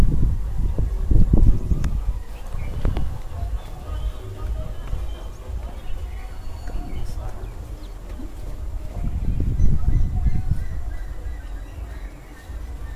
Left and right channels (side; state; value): both; identical; correlation 1.00